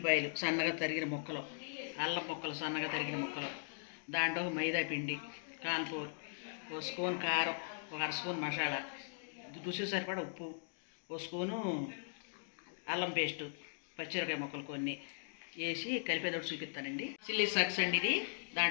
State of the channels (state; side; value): silent; right; digital silence